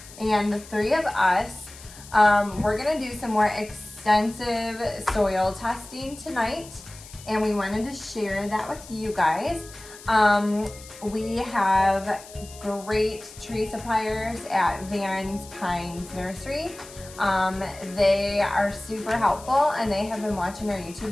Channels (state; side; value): noise; left; hiss, 18 dB below the sound